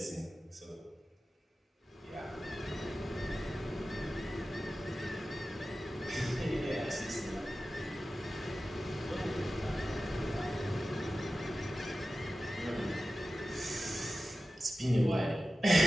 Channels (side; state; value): both; normal; correlation 0.94